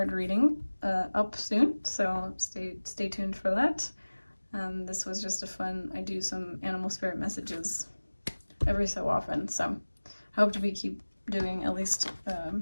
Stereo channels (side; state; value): both; inverted; correlation -1.00